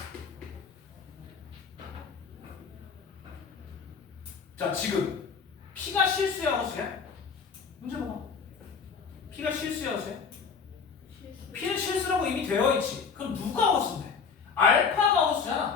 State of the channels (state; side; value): quieter; right; 5.8 dB